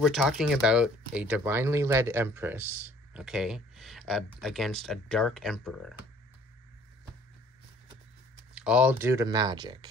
talking about a divinely led Empress, okay, against a dark Emperor. All due to magic.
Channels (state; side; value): normal; both; correlation 0.56